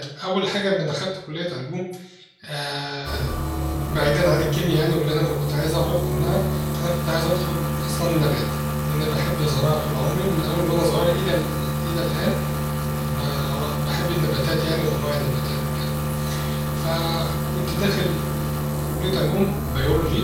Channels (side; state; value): both; identical; correlation 1.00